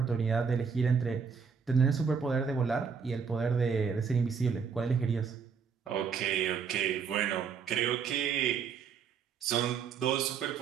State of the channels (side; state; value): left; quieter; 6.1 dB